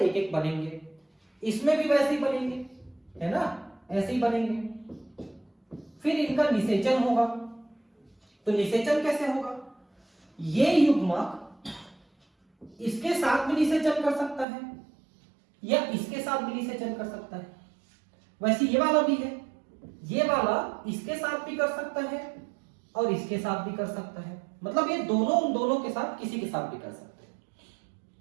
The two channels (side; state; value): left; drops out; at 14.5 s